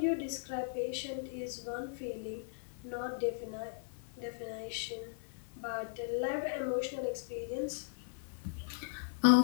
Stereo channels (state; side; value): silent; right; 53 dB below the other